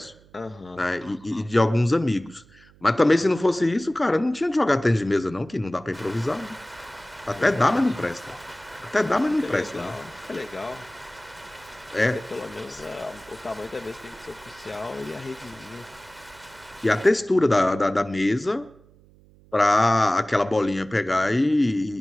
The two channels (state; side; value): noise; right; hum, 27 dB below the sound